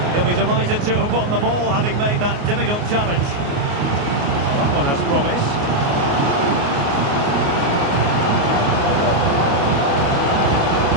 He'll be delighted to have won the ball, having made that difficult challenge. That one has promise.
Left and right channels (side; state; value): left; late; 29 ms